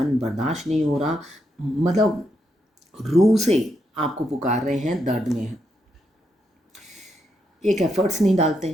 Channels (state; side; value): normal; both; correlation 0.81